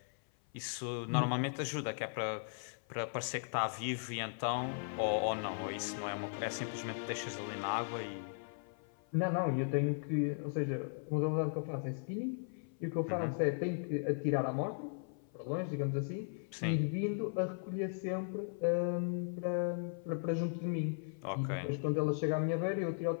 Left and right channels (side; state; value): right; silent; 53 dB below the other